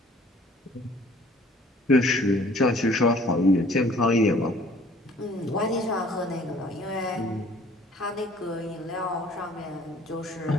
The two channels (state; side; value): normal; both; correlation 0.55